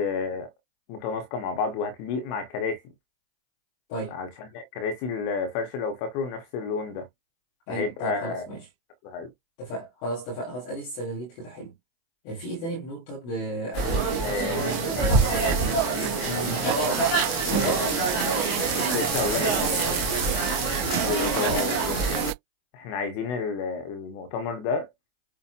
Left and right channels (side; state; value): right; late; 24 ms